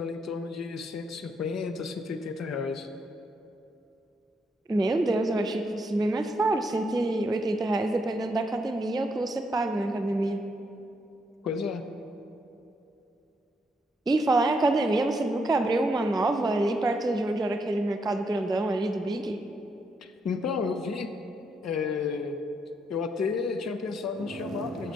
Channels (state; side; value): normal; both; correlation 0.77